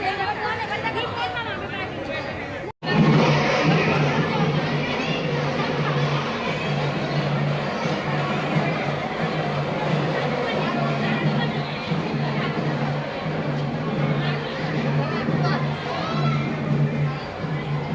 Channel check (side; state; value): both; identical; correlation 1.00